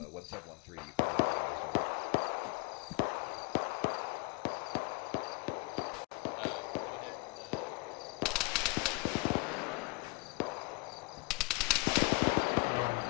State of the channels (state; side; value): quieter; right; 27.3 dB